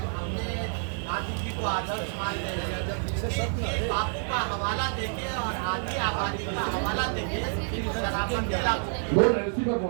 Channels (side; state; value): left; silent; 59 dB below the other